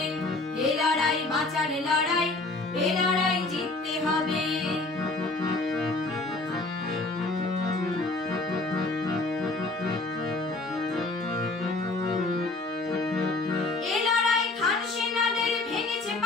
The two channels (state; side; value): quieter; right; 3.2 dB